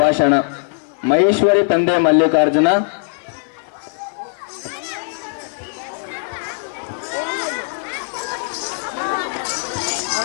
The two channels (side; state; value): right; silent; 58 dB below the other